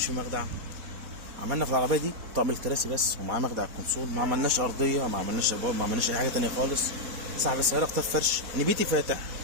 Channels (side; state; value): left; late; 4.2 ms